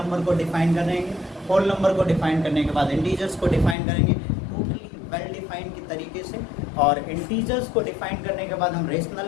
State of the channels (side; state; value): right; drops out; at 3.8 s